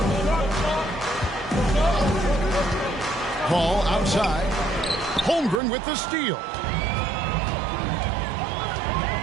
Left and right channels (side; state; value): left; drops out; at 5.6 s